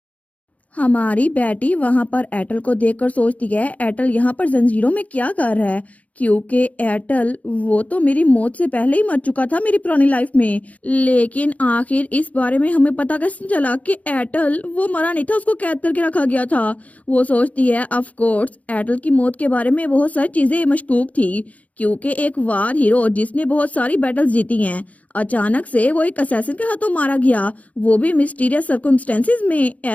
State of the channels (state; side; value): late; right; 0.070 ms